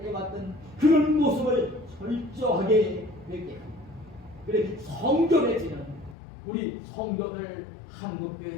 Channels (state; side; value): drops out; right; at 6.2 s